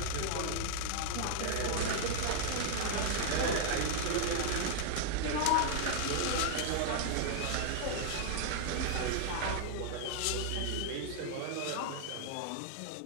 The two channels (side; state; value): both; different; correlation 0.00